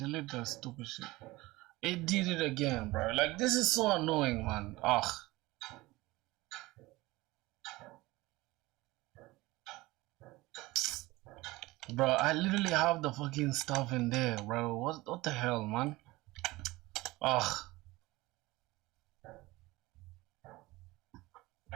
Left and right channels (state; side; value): quieter; left; 20.2 dB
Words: that stupid shit. It did it again, bro. Like, this is so annoying, man. Ugh. Bro, I literally have the fucking stuff in there, bro. What the hell, man? Ugh.